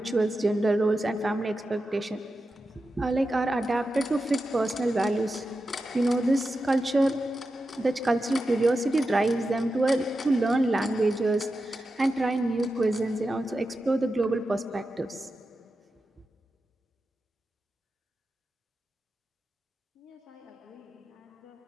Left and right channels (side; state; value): both; normal; correlation 0.90